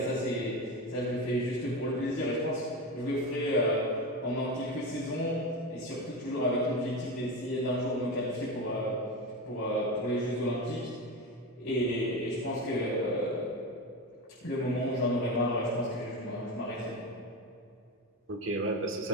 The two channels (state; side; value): normal; both; correlation 0.21